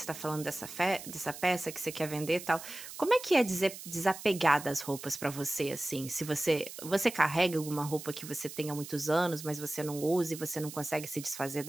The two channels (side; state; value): right; noise; hiss, 12 dB below the sound